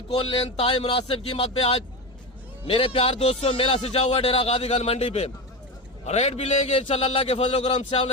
इंतहाई मुनासिब कीमत पे आज मेरे प्यार दोस्तों मेला सजा हुआ डेरा गाजी खान मंडी पे। रेट भी लेंगे इंशाल्लाह, अल्लाह के फजल करम से।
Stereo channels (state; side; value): normal; both; correlation 0.20